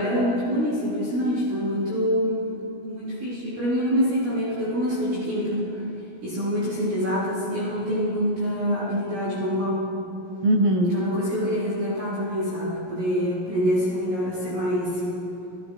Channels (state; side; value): late; left; 17 ms